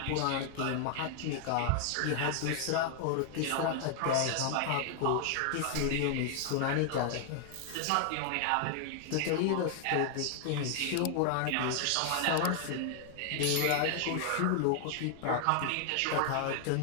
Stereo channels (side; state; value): both; different; correlation 0.00